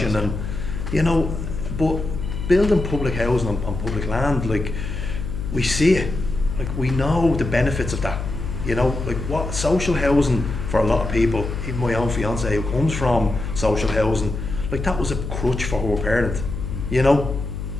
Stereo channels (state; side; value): noise; left; hum, 5 dB below the sound